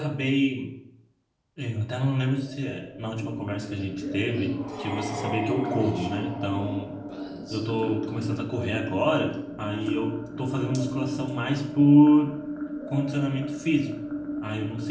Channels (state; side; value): identical; both; correlation 1.00